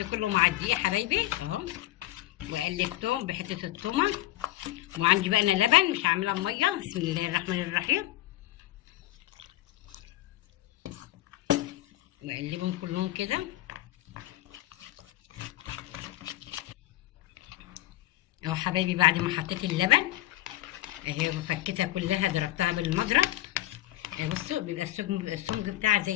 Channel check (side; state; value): right; quieter; 15.7 dB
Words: كله مع الدقيق يا حبايبي اهو. وقلبتهم بحته التومه. وعندي بقى انا لبن مش هعملها بميه. بسم الله الرحمن الرحيم. واقلبهم كلهم كده اهو حبايبي. بعد ما حطيت اللبن اهي وفكيتها كلها ضربتها بالمضرب. بصوا بيبقى السمك بتاعها